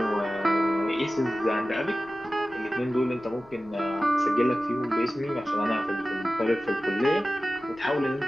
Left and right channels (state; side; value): noise; left; rumble, 27 dB below the sound